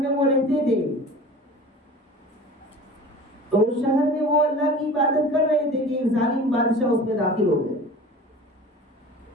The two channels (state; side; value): normal; both; correlation 0.40